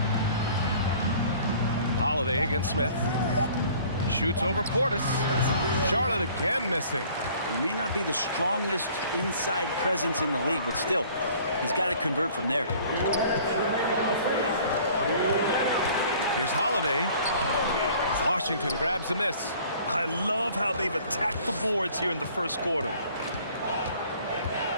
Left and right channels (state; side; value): inverted; both; correlation -0.52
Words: Holiday against Smith. Shoots over Portis. Charlotte again missing. He may not be the strongest inside presence in the league, but still, he's got to convert from there. Here's Holiday. Washington grabs the miss. I love how they've attacked the boards here in the first quarter.